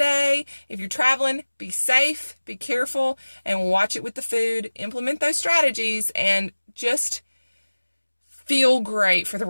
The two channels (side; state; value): both; inverted; correlation -1.00